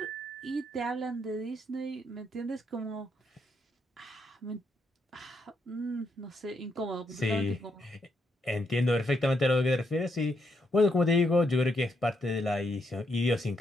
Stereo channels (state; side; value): normal; both; correlation 0.78